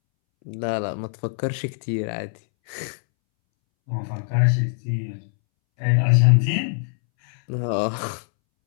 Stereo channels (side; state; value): right; silent; 63 dB below the other